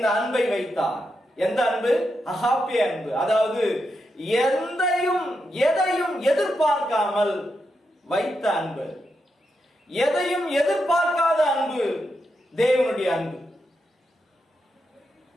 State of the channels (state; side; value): normal; both; correlation 0.85